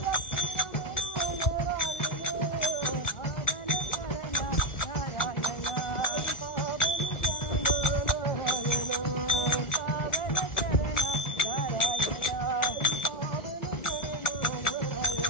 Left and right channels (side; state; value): right; late; 1.4 ms